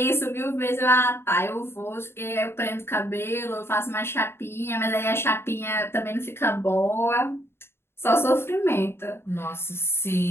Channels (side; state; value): right; late; 0.12 ms